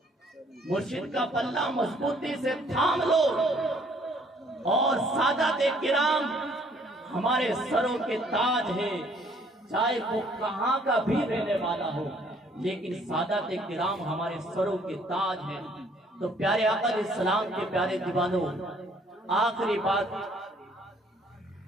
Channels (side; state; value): both; normal; correlation 0.62